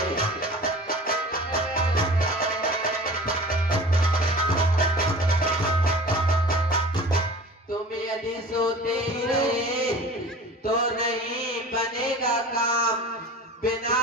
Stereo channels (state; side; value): normal; both; correlation 0.40